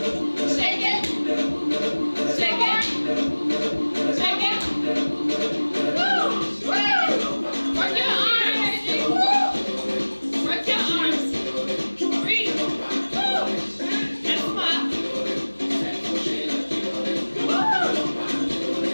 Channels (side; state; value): both; inverted; correlation -1.00